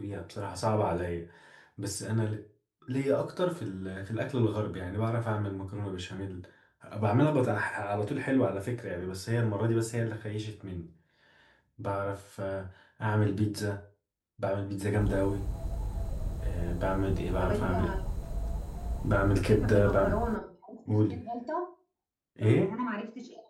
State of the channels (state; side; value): identical; both; correlation 1.00